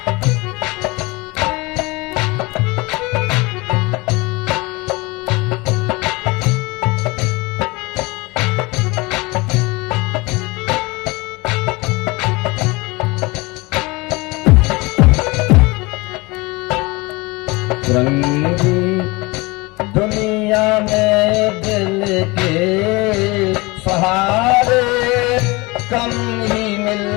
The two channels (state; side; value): quieter; right; 24.3 dB